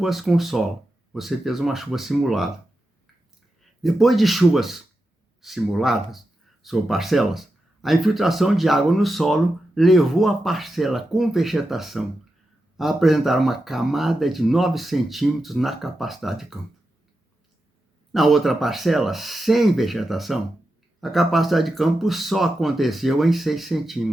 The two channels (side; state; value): both; normal; correlation 0.89